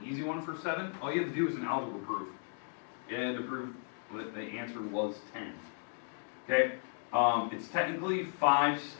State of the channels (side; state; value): right; silent; 54 dB below the other